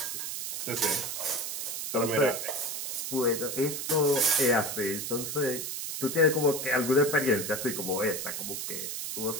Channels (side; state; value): right; noise; hiss, 4 dB below the sound